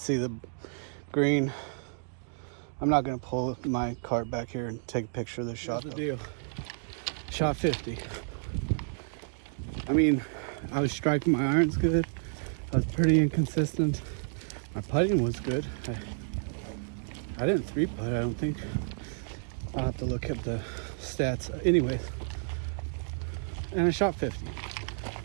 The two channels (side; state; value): left; silent; digital silence